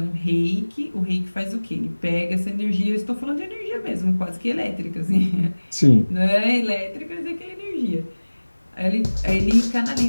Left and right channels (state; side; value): inverted; both; correlation -1.00